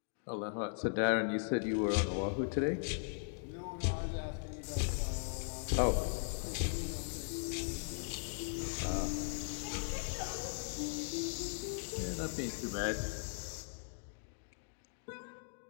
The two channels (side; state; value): right; silent; digital silence